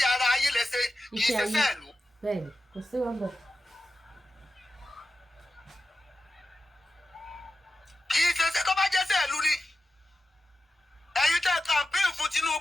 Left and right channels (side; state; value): both; normal; correlation 0.93